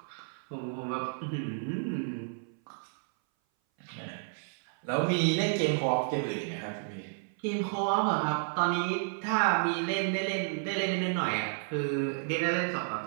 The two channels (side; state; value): left; silent; 57 dB below the other